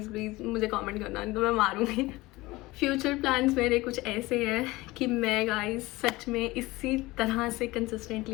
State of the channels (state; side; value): quieter; right; 20.3 dB